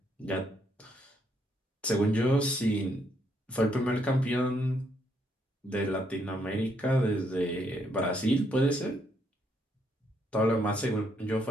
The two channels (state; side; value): normal; both; correlation 0.73